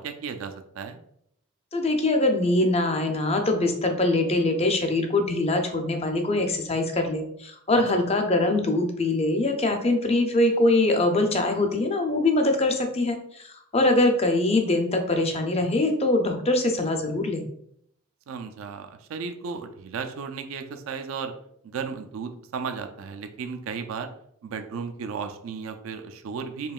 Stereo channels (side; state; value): both; normal; correlation 0.34